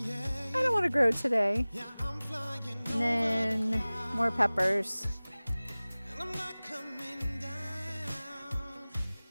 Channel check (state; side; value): inverted; both; correlation -0.99